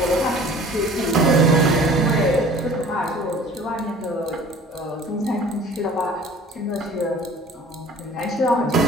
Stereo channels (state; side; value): normal; both; correlation 0.48